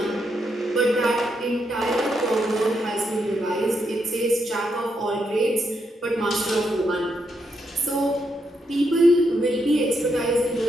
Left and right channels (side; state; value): both; normal; correlation 0.80